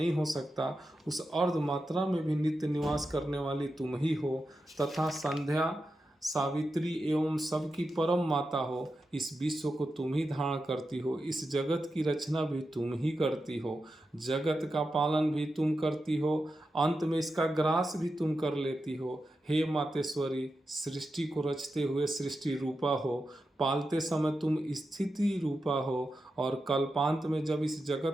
हो सकता, उस अर्ध मात्रा में भी नित्य निवास करने वाली तुम ही हो तथा संध्या, सावित्री एवं सबकी परम माता हो। इस विश्व को तुम ही धारण करती हो, इस जगत की रचना भी तुम ही करती हो, जगत का पालन भी तुम करती हो, अंत में इसका ग्रास भी तुम कर लेती हो। हे मातेश्वरी, सृष्टि को रचते हुए सृष्टि रूपा हो, पालते समय तुम स्थिति रूपा हो और कल्पांत में जब इस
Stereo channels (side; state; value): both; normal; correlation 0.89